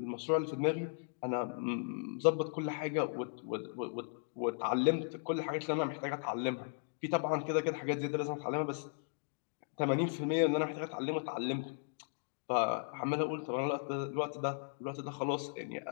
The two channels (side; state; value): right; silent; digital silence